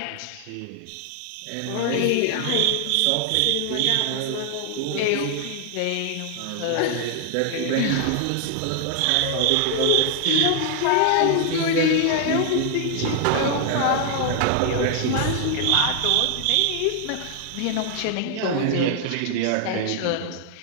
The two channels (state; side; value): different; both; correlation 0.00